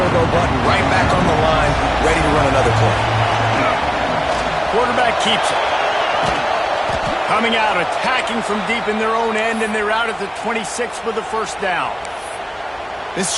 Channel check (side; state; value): both; identical; correlation 1.00